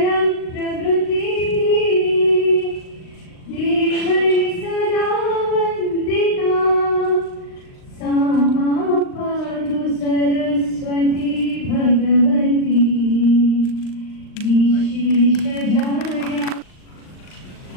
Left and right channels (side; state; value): right; late; 39 ms